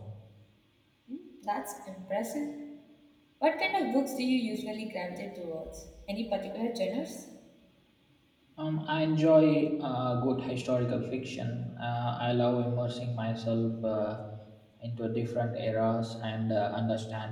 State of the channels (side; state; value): both; identical; correlation 1.00